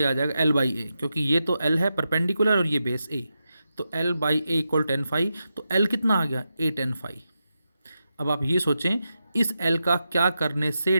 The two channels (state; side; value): inverted; both; correlation -0.88